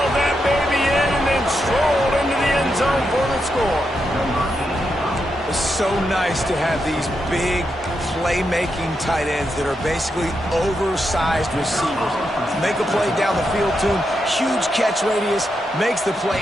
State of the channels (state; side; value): normal; both; correlation 0.84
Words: that baby in and then strolled into the end zone for the score. It's so nice to have these big playmaking tight ends that are basically oversized receivers. Make a play down the field to him, huge catch radius, makes the play,